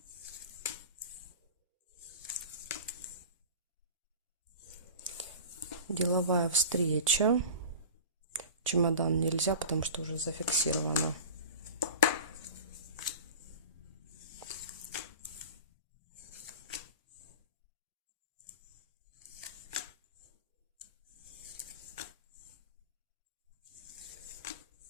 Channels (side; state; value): both; inverted; correlation -0.36